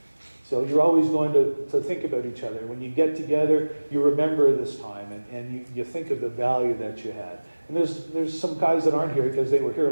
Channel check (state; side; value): inverted; both; correlation -1.00